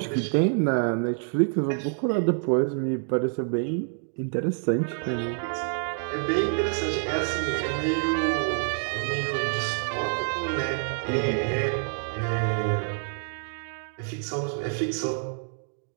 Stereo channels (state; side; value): silent; left; 55 dB below the other